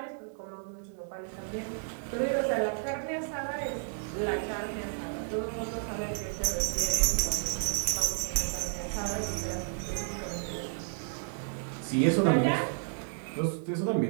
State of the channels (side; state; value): left; silent; digital silence